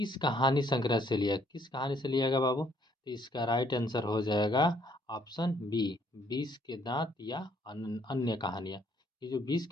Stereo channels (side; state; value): both; normal; correlation 0.66